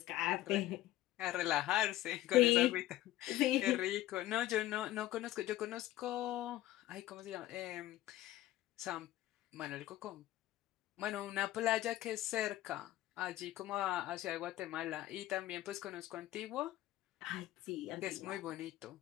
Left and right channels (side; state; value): right; quieter; 15.1 dB